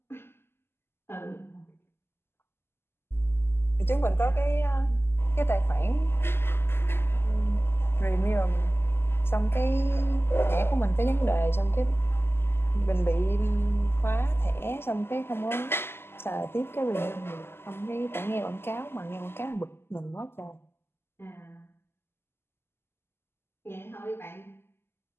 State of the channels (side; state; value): right; late; 0.12 ms